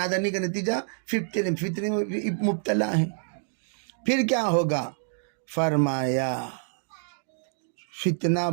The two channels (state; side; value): silent; left; digital silence